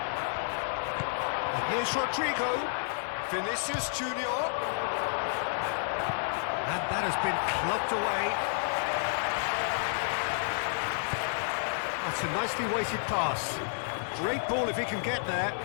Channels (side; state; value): right; silent; 57 dB below the other